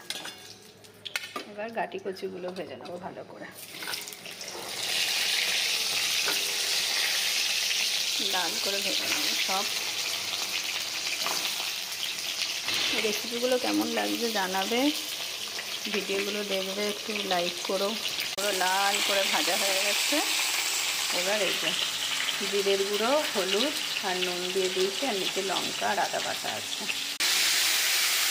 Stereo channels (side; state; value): both; identical; correlation 1.00